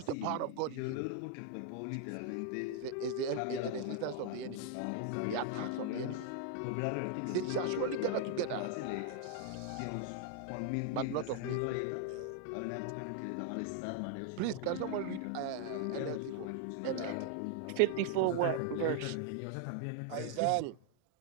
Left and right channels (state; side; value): different; both; correlation 0.00